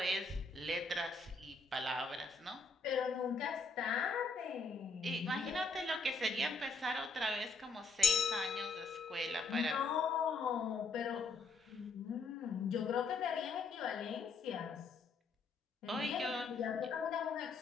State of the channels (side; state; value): right; quieter; 4.1 dB